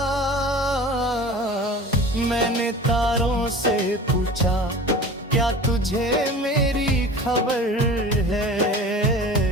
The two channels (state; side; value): normal; both; correlation 0.38